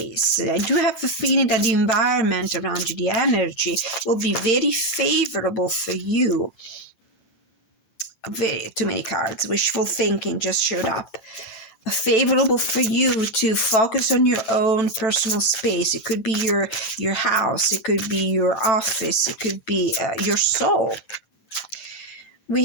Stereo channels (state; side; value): late; right; 9.0 ms